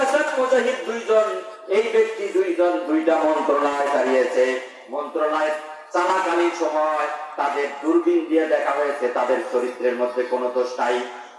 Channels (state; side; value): identical; both; correlation 1.00